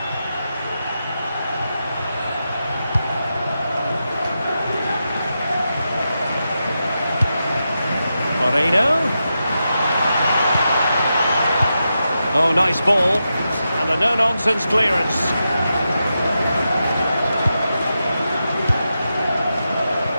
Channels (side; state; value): both; inverted; correlation -0.88